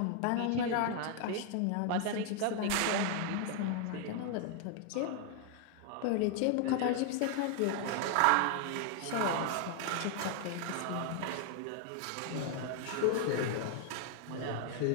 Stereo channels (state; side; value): different; both; correlation 0.00